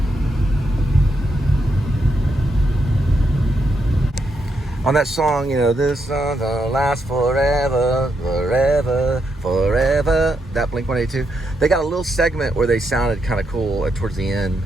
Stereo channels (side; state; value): both; normal; correlation 0.81